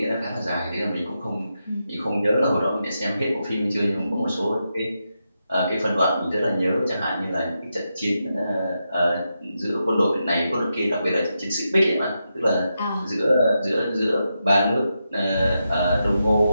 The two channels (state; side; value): inverted; both; correlation -0.86